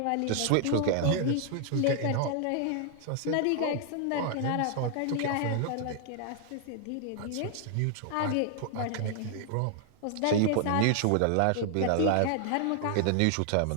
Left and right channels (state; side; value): different; both; correlation 0.00